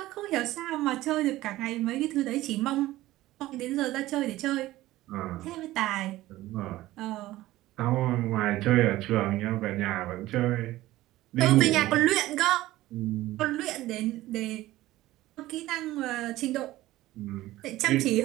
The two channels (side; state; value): left; quieter; 16.5 dB